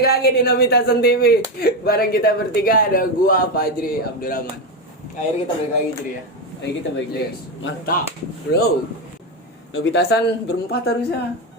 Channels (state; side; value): normal; both; correlation 0.12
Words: lagi di Nobitasan TV. Bareng kita bertiga ada gua Fajri Abdurrahman. Akhirnya kita balik lagi Jri ya. Akhirnya kita balik lagi. Mantap, bro. Nobitasan berempat harusnya.